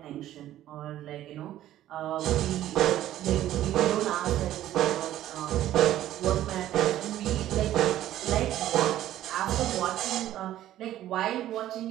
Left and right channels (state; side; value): quieter; left; 13.1 dB